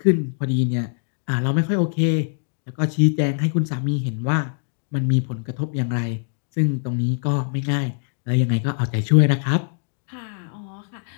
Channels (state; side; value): silent; right; digital silence